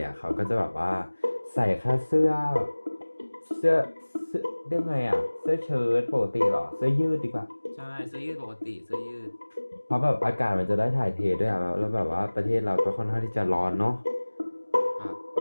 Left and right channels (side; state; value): both; inverted; correlation -1.00